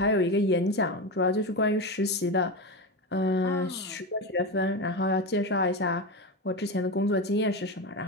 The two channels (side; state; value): both; normal; correlation 0.18